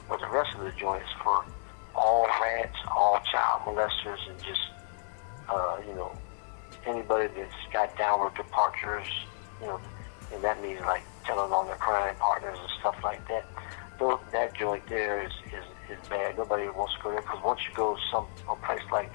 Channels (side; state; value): right; silent; digital silence